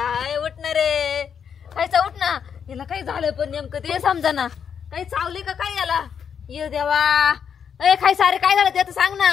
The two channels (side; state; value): right; quieter; 7.5 dB